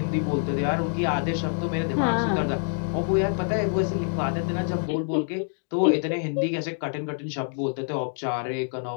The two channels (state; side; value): silent; right; 61 dB below the other